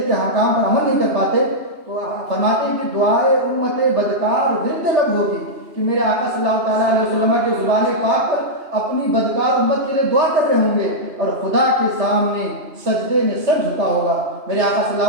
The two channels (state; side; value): late; left; 2.9 ms